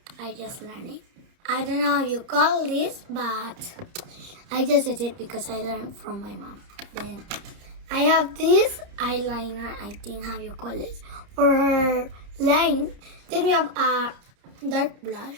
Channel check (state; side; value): late; left; 30 ms